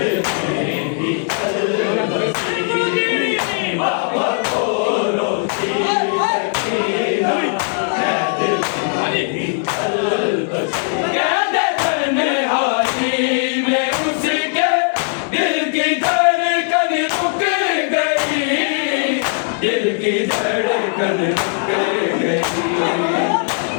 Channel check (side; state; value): right; silent; 59 dB below the other